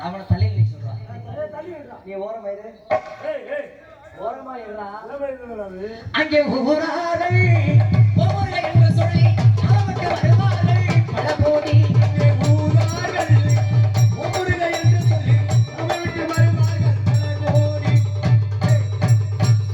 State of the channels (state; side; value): identical; both; correlation 1.00